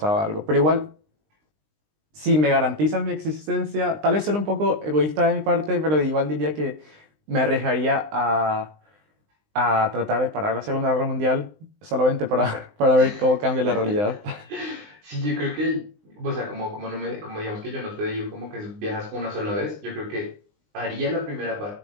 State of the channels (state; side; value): late; left; 20 ms